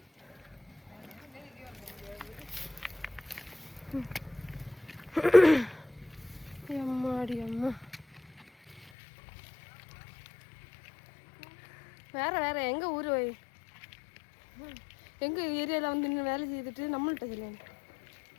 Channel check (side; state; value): right; drops out; at 8.8 s